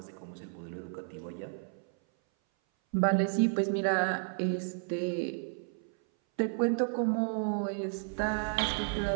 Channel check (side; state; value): left; silent; 56 dB below the other